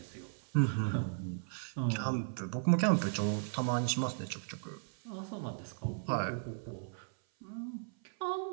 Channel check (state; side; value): silent; left; 54 dB below the other